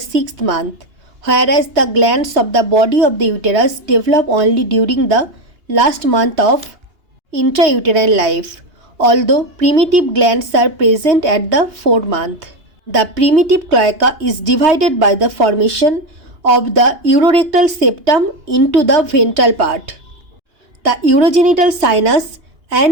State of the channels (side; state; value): left; late; 2.8 ms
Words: month, whereas the glands of the body of the uterus develop only during the last month of intrauterine life, although primitive glands are present at the 4th month. The primitive cloaca is divided by the formation of the urorectal septum into the ventral part, the urogenital sinus